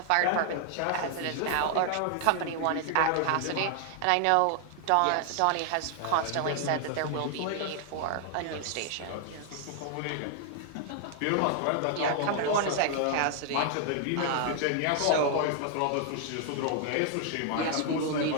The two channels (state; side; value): different; both; correlation 0.00